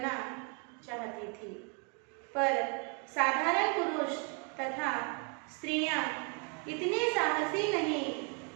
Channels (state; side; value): quieter; left; 35.6 dB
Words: चाहती थी, पर साधारण पुरुष तथा स्त्रियां इतने साहसी नहीं